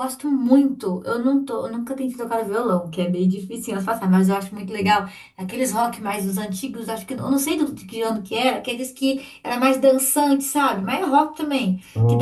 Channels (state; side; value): identical; both; correlation 1.00